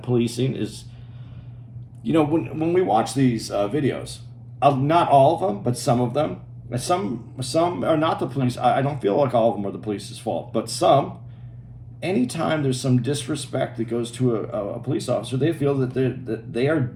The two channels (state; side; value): identical; both; correlation 1.00